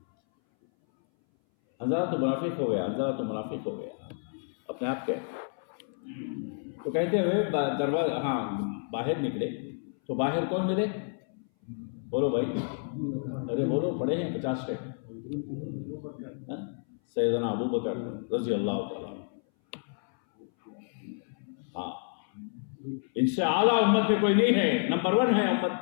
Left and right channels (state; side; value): silent; right; 58 dB below the other